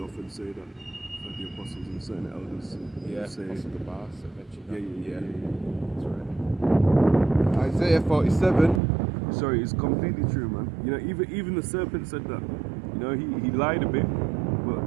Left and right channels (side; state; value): left; drops out; at 8.8 s